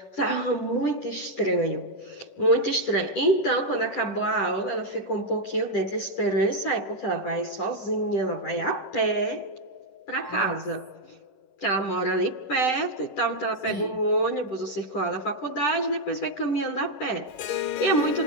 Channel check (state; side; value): late; right; 10 ms